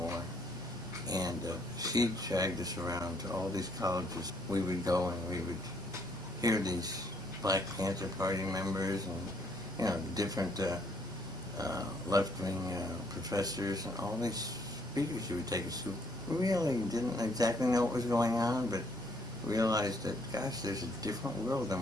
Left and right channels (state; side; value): normal; both; correlation 0.68